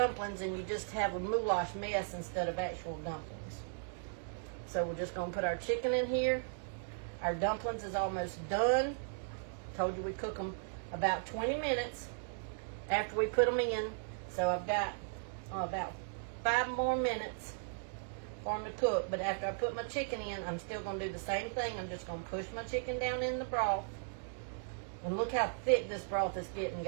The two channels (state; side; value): silent; left; digital silence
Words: and you just have a goulash mess instead of actual dumplings. So we're just going to put our chicken in here. Our dumplings is almost done. Told you we cook them about 20 minutes after we put them in. So I've got about 5 more minutes for them to cook. But after I put my chicken in, I'm still going to do the same thing. I'm just going to push my chicken down in the broth. And look how thick this broth is getting,